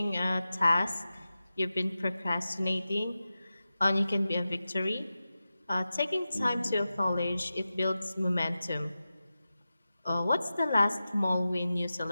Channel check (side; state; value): both; inverted; correlation -0.94